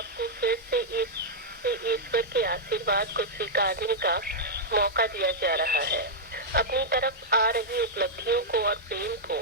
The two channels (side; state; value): both; normal; correlation -0.06